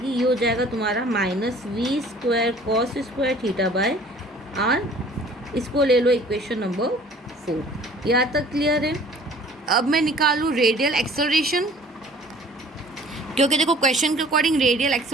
ये हो जाएगा तुम्हारा minus v square cos square theta by r. इसको ले लो इक्वेशन नंबर 4। यहाँ तक क्लियर है। अब मैं निकालूँ रेडियल एक्सेलरेशन, क्योंकि देखो क्वेश्चन के अकॉर्डिंग रेडियल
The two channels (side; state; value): both; normal; correlation 0.51